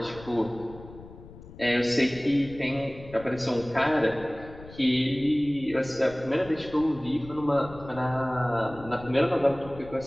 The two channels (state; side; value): noise; left; rumble, 17 dB below the sound